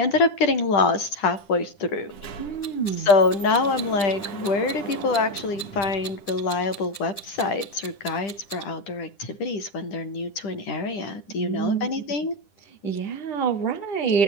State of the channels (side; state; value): right; late; 10 ms